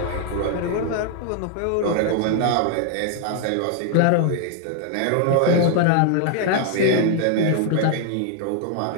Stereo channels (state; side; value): different; both; correlation 0.00